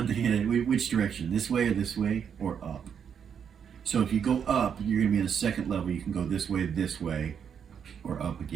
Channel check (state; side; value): quieter; left; 7.6 dB